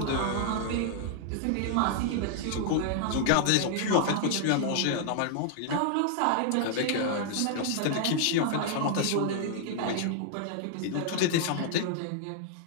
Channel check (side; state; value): both; different; correlation 0.00